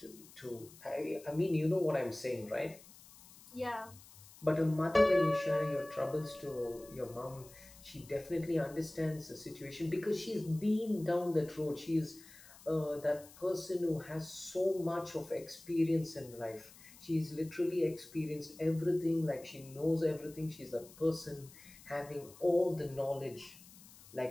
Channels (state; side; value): noise; left; hiss, 21 dB below the sound